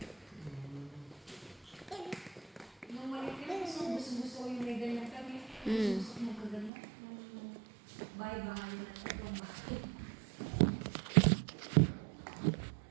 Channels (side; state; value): left; drops out; at 6.7 s